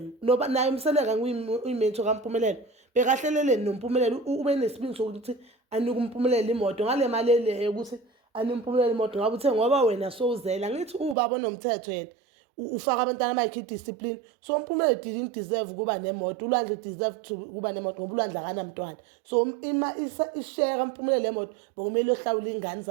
noba naye umseleka uyimento kaMphumelelo bekahlelele noMphumelelo ube nesibindi sokuthi anika uMphumelelo imoto ngale mali le ukuthi anika uMphumelelo imoto ngabe uthe ngoba wena sowuzela ngithi ubaba nomthetho yena ufaka abantwana bakhe discipline so uMphumelelo didn't deserve kuba nemoto uLwandle deserve to kuba nemoto ngoba uLwandle akanamntwana so ima ishare uMphumelelo lemoto bokumele ohlawula ingane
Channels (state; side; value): drops out; left; at 11.2 s